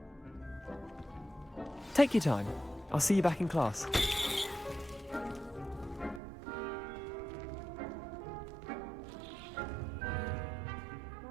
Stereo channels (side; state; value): left; drops out; at 6.2 s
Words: Take your time. I'll see you back in class.